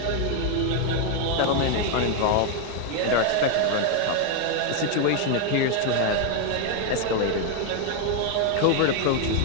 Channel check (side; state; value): both; different; correlation 0.01